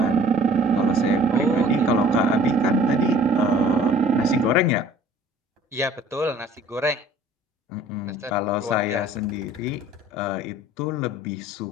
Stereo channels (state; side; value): normal; both; correlation 0.51